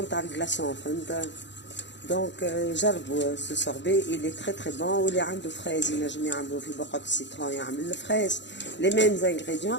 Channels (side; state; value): right; late; 0.52 ms